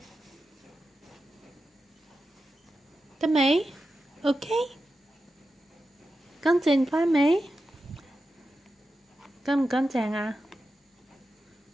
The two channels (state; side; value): normal; both; correlation 0.91